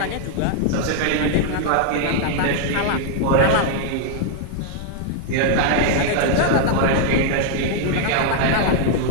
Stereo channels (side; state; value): both; different; correlation 0.00